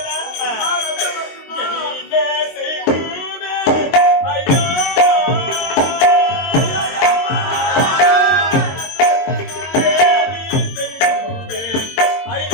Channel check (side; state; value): right; late; 22 ms